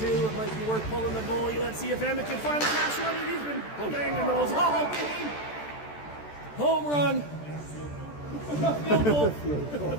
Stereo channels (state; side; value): late; right; 14 ms